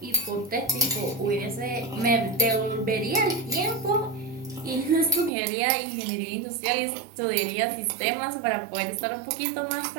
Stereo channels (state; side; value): drops out; left; at 5.3 s